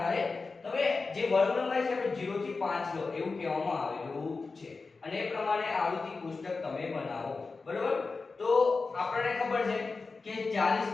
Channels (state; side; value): quieter; right; 4.1 dB